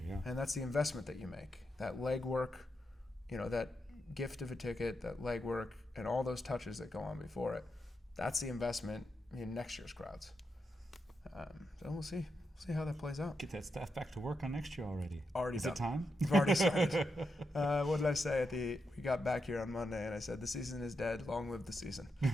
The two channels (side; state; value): both; normal; correlation 0.85